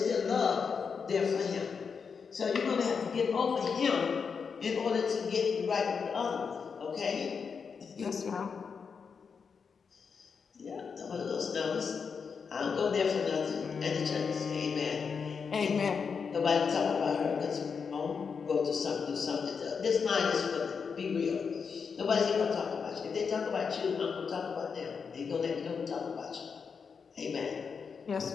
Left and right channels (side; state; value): right; quieter; 5.9 dB